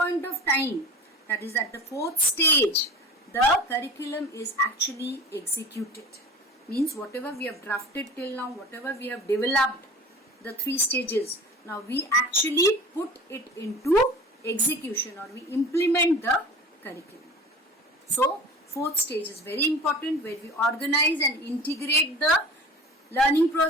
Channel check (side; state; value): both; normal; correlation 0.39